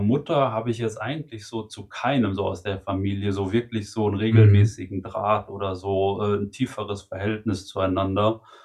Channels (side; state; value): both; identical; correlation 1.00